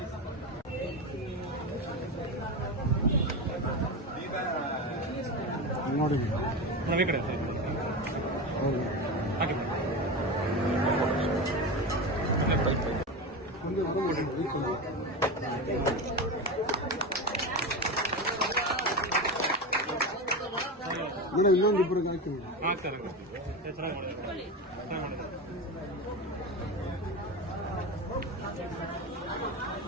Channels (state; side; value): normal; both; correlation 0.21